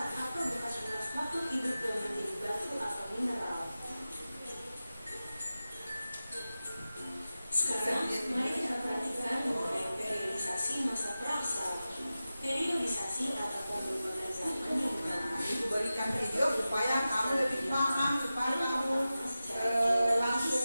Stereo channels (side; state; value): both; inverted; correlation -0.94